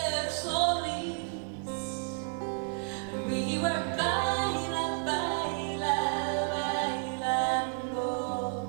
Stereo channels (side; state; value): left; silent; 57 dB below the other